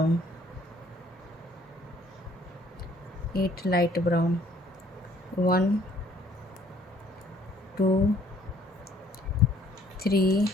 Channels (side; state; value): both; normal; correlation 0.61